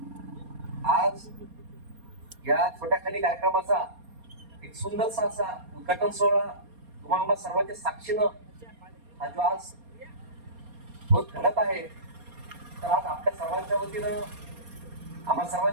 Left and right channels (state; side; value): late; left; 4.3 ms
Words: आज या छोट्याखानी कार्यक्रमाचा एक सुंदरसा असा उद्घाटन सोहळा तुम्हाला सर्वांच्या साक्षीनं हा जो आज होत घडत आहे, तर आज आपल्या सर्वांच्या वतीनं, आम्हा